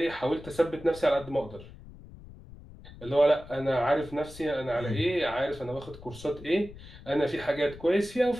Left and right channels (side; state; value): left; noise; rumble, 18 dB below the sound